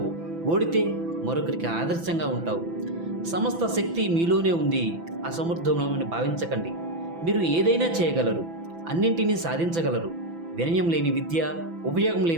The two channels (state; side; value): late; left; 6.0 ms